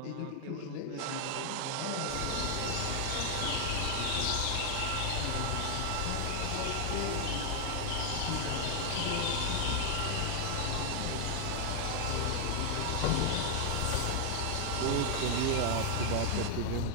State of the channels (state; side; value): different; both; correlation 0.00